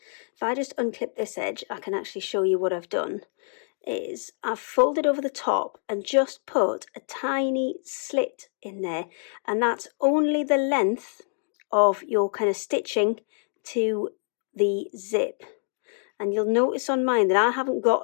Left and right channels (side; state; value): right; silent; 61 dB below the other